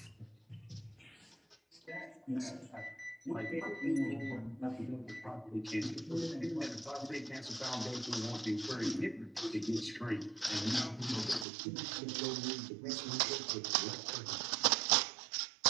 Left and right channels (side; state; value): left; drops out; at 11.5 s